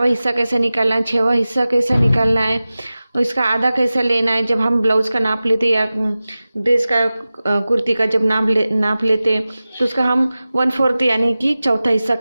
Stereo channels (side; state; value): both; inverted; correlation -0.96